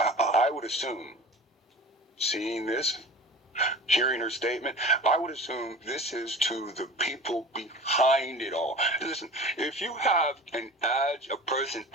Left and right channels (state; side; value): normal; both; correlation 0.38